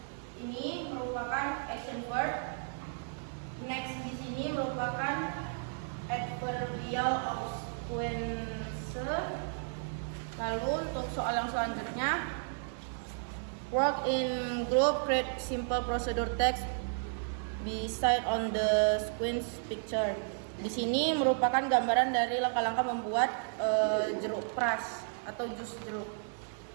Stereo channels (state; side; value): silent; left; digital silence